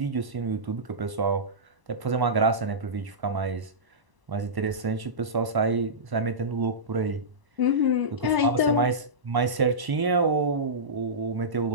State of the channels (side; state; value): left; late; 1.0 ms